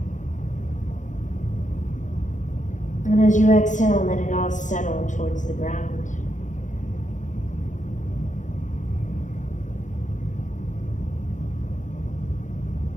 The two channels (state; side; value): late; right; 0.36 ms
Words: And as you exhale, let it all settle towards the ground.